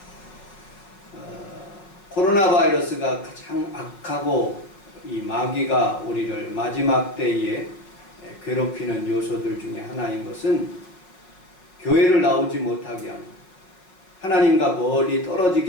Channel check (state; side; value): late; right; 5.4 ms